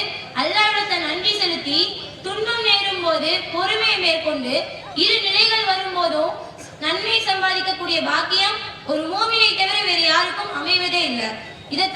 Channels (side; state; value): both; identical; correlation 1.00